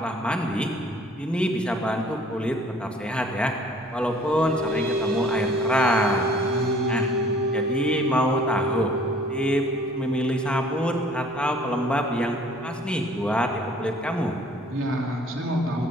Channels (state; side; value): normal; both; correlation 0.54